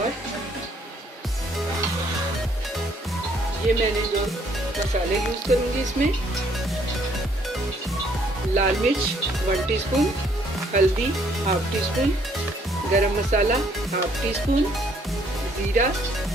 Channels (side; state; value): both; normal; correlation 0.65